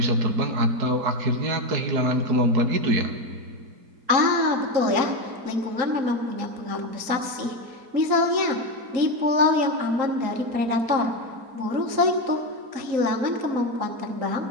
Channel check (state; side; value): late; left; 3.8 ms